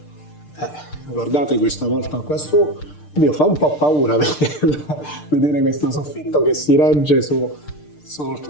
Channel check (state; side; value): late; right; 6.7 ms